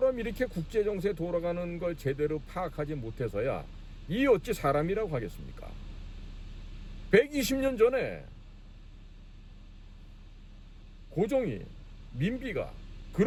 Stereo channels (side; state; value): both; identical; correlation 1.00